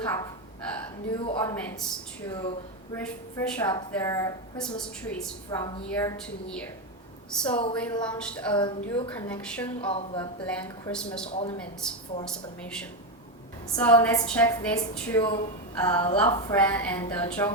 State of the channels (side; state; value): both; normal; correlation 0.10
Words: up new ornaments to refresh up their Christmas trees from year to year. So we launched a new collection of blank Christmas ornaments for Sublimation. So let's check these two Love Friend and